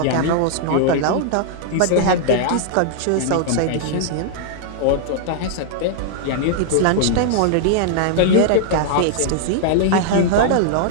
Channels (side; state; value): both; different; correlation -0.01